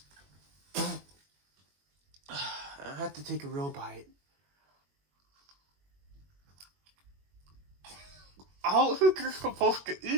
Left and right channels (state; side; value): late; left; 21 ms